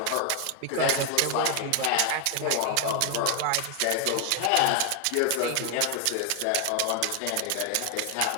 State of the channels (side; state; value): both; different; correlation 0.00